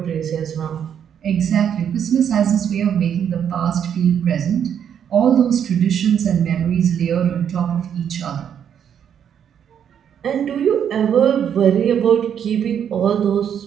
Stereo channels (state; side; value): quieter; left; 8.6 dB